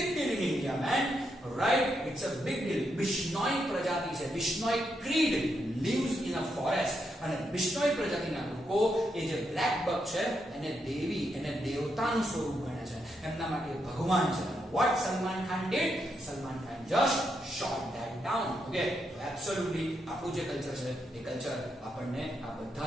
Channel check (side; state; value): both; normal; correlation 0.81